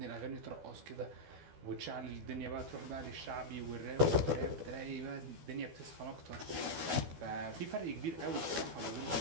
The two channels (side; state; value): left; late; 12 ms